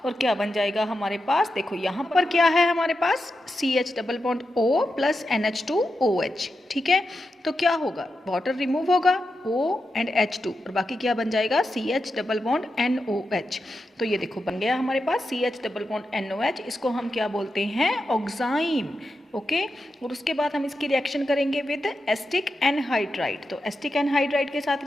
और क्या बन जाएगा हमारे पास? देखो यहाँ पर क्या है हमारे पास? CH double bond O plus NH2OH, ठीक है। तो क्या होगा? वाटर रिमूव होगा, O एंड H2, और बाकी क्या बन जाएगा? CH double bond NOH। तो ये देखो बन गया हमारे पास CH डबल बॉन्ड NOH। इसको हम क्या बोलते हैं? Oxime, okay. और उसके बाद हम इसकी रिएक्शन करेंगे विद एस्टिक एनहाइड्राइड। तो एस्टिक एनहाइड्राइड के साथ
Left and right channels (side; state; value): both; normal; correlation 0.88